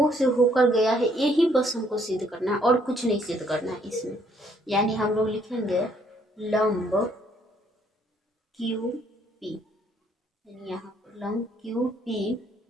से होकर गया है, यही बस हमको सिद्ध करना है और कुछ नहीं सिद्ध करना है इसमें। यानी हम लोग लिखेंगे लंब क्यू पी, यानी यहाँ पर लंब क्यू पी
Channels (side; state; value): both; normal; correlation 0.67